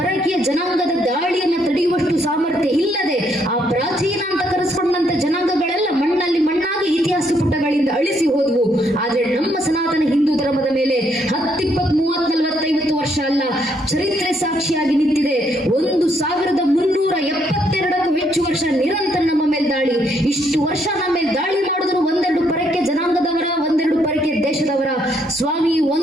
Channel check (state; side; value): normal; both; correlation 0.72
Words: ಜನಾಂಗದ ದಾಳಿಯನ್ನು ತಡೆಯುವಷ್ಟು ಸಾಮರ್ಥ್ಯ ಇಲ್ಲದೆ ಆ ಪ್ರಾಚೀನ ಅಂತ ಕರೆಸ್ಕೊಂಡಂತ ಜನಾಂಗಗಳೆಲ್ಲ ಮಣ್ಣಲ್ಲಿ ಮಣ್ಣಾಗಿ ಇತಿಹಾಸ ಪುಟಗಳಿಂದ ಅಳಿಸಿ ಹೋದವು. ಆದ್ರೆ ನಮ್ಮ ಸನಾತನ ಹಿಂದೂ ಧರ್ಮದ ಮೇಲೆ 10, 20, 30, 40, 50 ವರ್ಷ ಅಲ್ಲ, ಚರಿತ್ರೆ ಸಾಕ್ಷಿಯಾಗಿ ನಿಂತಿದೆ. 1,372ಕ್ಕೂ ಹೆಚ್ಚು ವರ್ಷ ನಿರಂತರ ನಮ್ಮ ಮೇಲೆ ದಾಳಿ. ಇಷ್ಟು ವರ್ಷ ನಮ್ಮ ಮೇಲೆ ದಾಳಿ ಮಾಡಿದ್ರು ಒಂದೆರಡು ಪರಕ್ಕೆ ಜನಾಂಗದವರ, ಒಂದೆರಡು ಪರಕ್ಕೆ ದೇಶದವರ. ಸ್ವಾಮಿ,